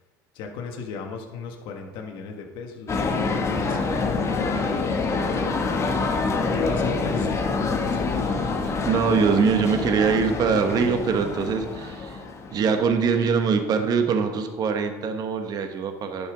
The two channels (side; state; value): both; normal; correlation 0.51